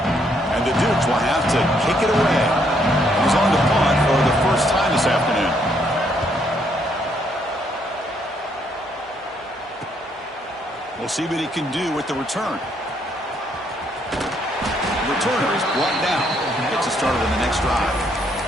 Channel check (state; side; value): normal; both; correlation 0.71